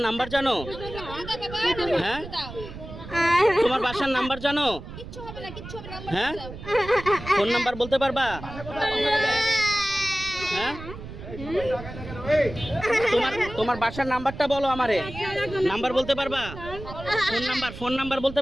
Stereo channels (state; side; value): noise; right; rumble, 12 dB below the sound